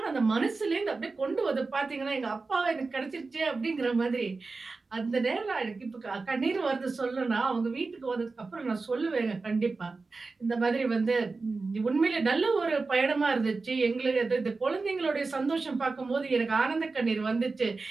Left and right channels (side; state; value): left; quieter; 3.9 dB